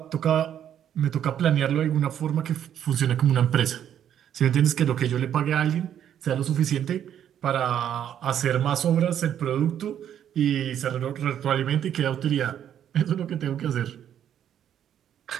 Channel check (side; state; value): left; quieter; 9.9 dB